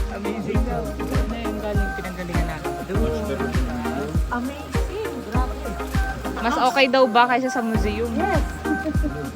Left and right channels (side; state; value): both; identical; correlation 1.00